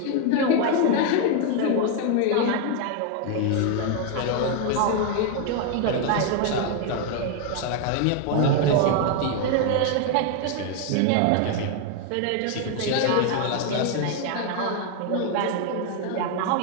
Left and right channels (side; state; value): both; different; correlation 0.01